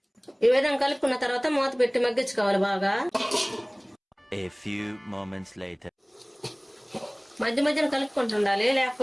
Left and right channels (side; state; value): both; identical; correlation 1.00